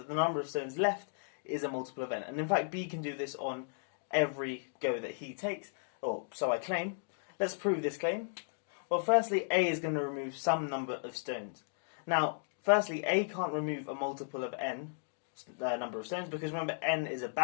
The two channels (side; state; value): right; silent; digital silence